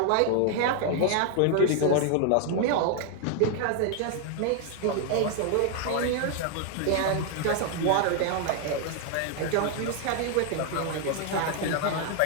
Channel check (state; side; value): different; both; correlation 0.00